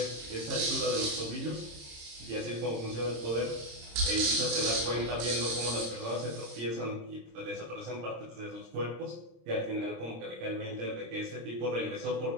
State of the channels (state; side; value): late; left; 26 ms